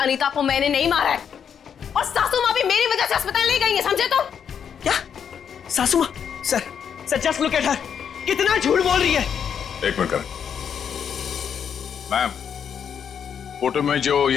को मैंने नहीं मारा है, और सासू माँ भी मेरी वजह से अस्पताल ले गई है, समझे तुम? क्या? सासू माँ? Sir just look at her, कितना झूठ बोल रही है। एक मिनट करण। मैम, फोटो में जो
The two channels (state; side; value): quieter; right; 7.8 dB